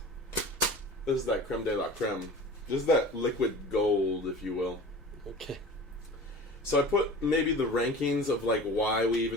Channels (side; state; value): both; normal; correlation 0.38